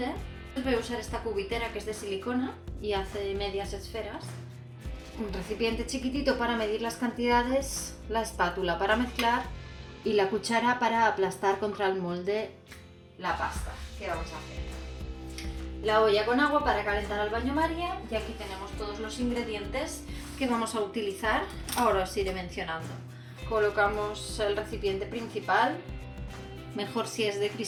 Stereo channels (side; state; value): both; identical; correlation 1.00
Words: Voy a usar esta cubitera que es de silicona y hace medias esferas. Un recipiente chiquitito para medir las cantidades, la espátula para mezclar y la cuchara para aplastar contra el molde la pasta que vamos a hacer. La olla con agua para calentar al baño María y aquí tenemos todos los ingredientes que vamos a utilizar. Ahora os iré mencionando. Colocamos el recipiente principal, mejor si es de